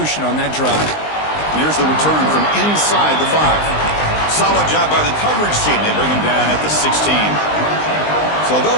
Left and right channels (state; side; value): late; right; 19 ms